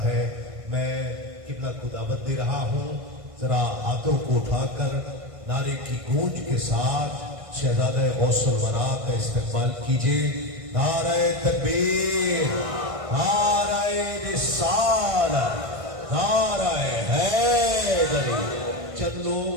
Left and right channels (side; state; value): left; late; 1.5 ms